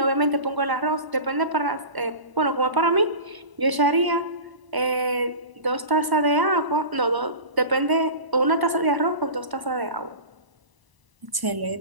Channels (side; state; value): left; late; 1.0 ms